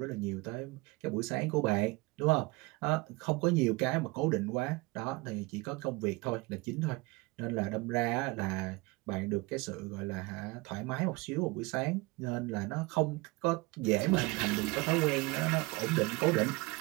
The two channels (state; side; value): quieter; left; 24.2 dB